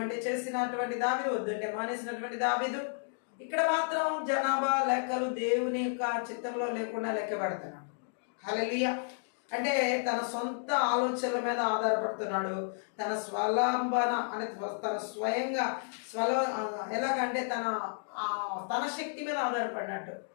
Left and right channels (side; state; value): right; silent; digital silence